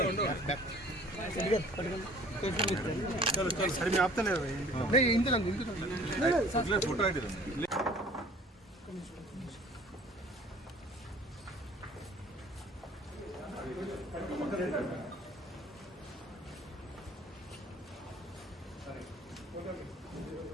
चलो चलो sir मैं आपता नहीं Inder photo ID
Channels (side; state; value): both; normal; correlation 0.51